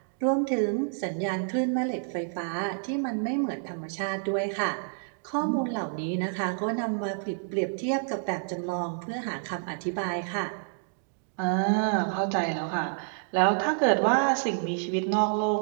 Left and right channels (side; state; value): left; silent; digital silence